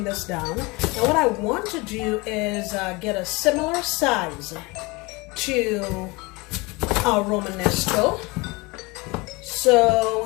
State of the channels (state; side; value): quieter; right; 25.1 dB